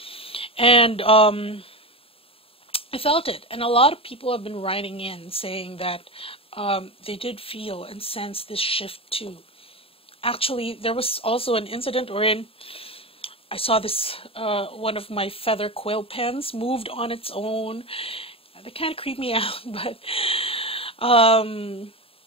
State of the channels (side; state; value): right; late; 0.27 ms